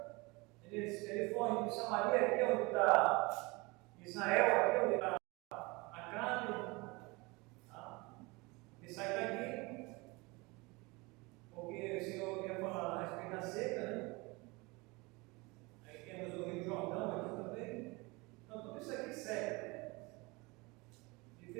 ele foi de Samaria, aqui onde está Israel, aqui onde está Acabe. Ele sai daqui, porque o Senhor ia falar a respeito da seca, né? Aí temos o Rio Jordão aqui também. Então, tudo isso aqui segue. Ele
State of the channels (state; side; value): quieter; left; 25.2 dB